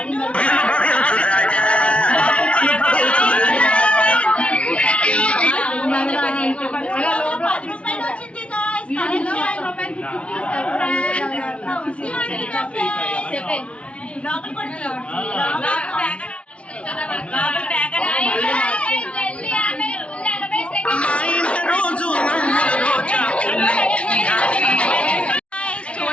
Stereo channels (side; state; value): right; late; 0.061 ms